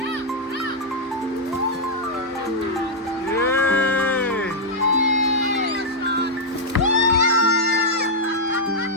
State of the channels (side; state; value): both; normal; correlation -0.05